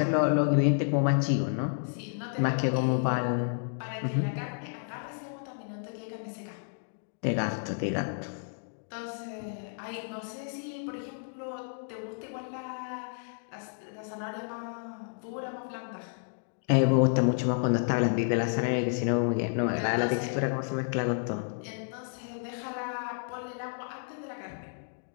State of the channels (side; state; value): right; silent; digital silence